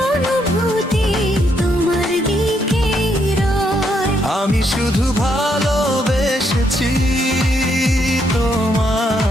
অনুভূতি তোমার দিকেই রয়। আমি শুধু ভালোবেসেছি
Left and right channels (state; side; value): normal; both; correlation 0.75